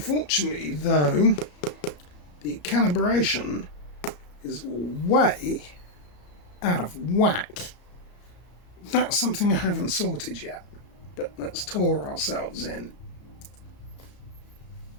though, the calibration is way out of whack. That's something I haven't sorted yet, but let's tour ourselves in.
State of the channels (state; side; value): late; right; 33 ms